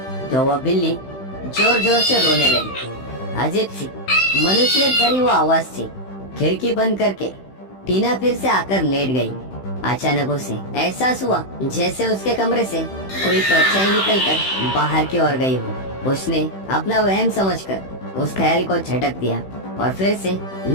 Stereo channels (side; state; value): right; late; 15 ms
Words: तो वह बिल्ली जोर जोर से रोने लगी। अजीब सी मनुष्य भरी वो आवाज थी। खिड़की बंद करके टीना फिर से आकर लेट गई। अचानक उसे एहसास हुआ जैसे उसके कमरे से कोई परछाई निकलकर बाहर की ओर गई हो। उसने अपना वहम समझकर उस ख्याल को झटक दिया और फिर से